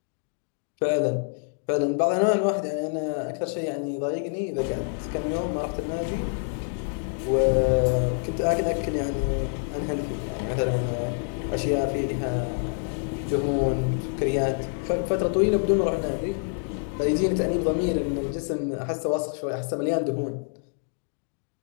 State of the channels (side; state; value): right; silent; 60 dB below the other